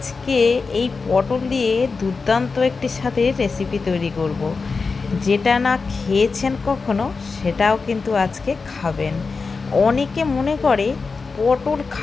এই পটল দিয়ে দুর্দান্ত একটি স্বাদের রেসিপি তৈরি করব। যেটা না খেয়েছেন কখনো সেটাও কিন্তু আজকে খাবেন। অনেকে মনে করে পটল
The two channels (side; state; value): right; quieter; 4.5 dB